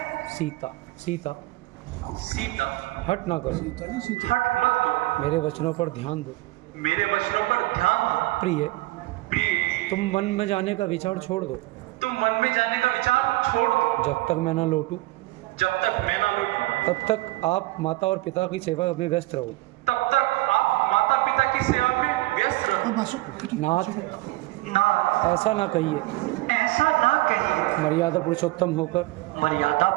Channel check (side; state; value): left; quieter; 20.1 dB